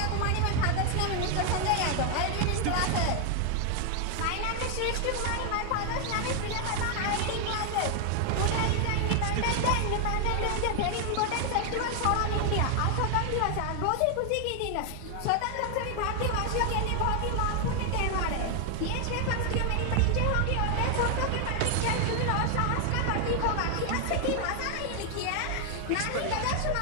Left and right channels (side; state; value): both; different; correlation 0.00